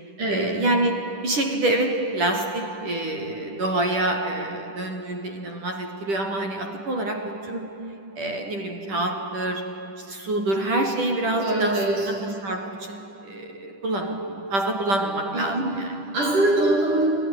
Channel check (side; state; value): left; late; 10 ms